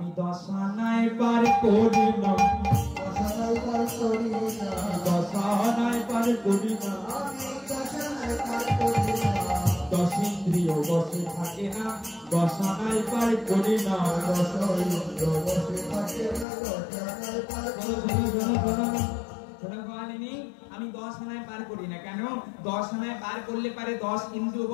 10 আনায় পার করি না, 10 আনায় পার করি না, 10 আনায় পার করি না, আমি 10 আনায় পার করি না। দশ ইন্দ্রিয় বসে থাকে না, দশ আনায় পার করি না, দশ ইন্দ্রিয় বসে থাকে না, দশ আনায় পার করি না। আমি 10 আনায় পার করি না কেন? 10 আনায় পার করলে পারে 10 ইন্দ্রিয়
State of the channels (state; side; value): drops out; right; at 16.4 s